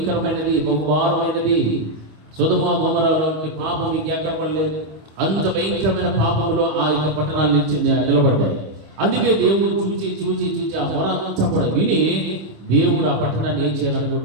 బహుభారమైనది. సొదొమ గొమొర్రా వంటి పాపం ఇంకెక్కడ పడలేదు. అంత భయంకరమైన పాపంలో ఆ యొక్క పట్టణాలు నిలబడ్డాయి. అందుకే దేవుడు చూచి చూచి చూచి ఆ మొర అంతా కూడా విని దేవుడు ఆ పట్టణాన్ని ఏం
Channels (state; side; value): late; left; 25 ms